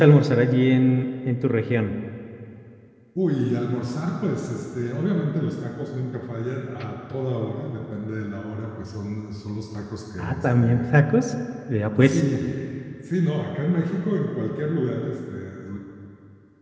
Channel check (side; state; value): both; identical; correlation 1.00